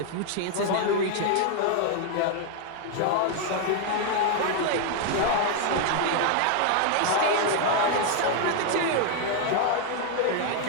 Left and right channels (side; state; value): both; different; correlation 0.00